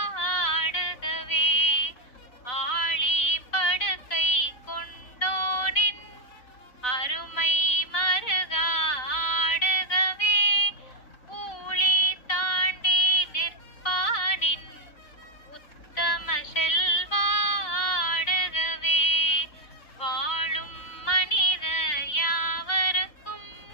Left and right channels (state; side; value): late; right; 4.0 ms